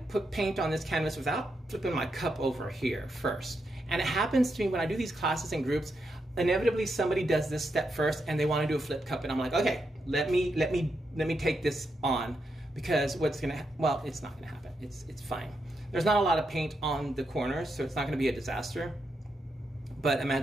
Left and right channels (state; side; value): normal; both; correlation 0.83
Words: put paint on this canvas without flipping my cup over here first. And it happens to me when I do these classes in groups, inevitably somebody does this step first and they want to do a flip cup, and I'm like, okay, let me take this on, because well, it's not gonna happen. It's fine. There's not a lot of paint on the corners, so it's not gonna be a disaster. But